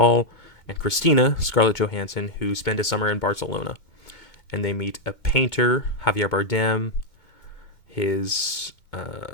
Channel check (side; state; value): right; late; 2.2 ms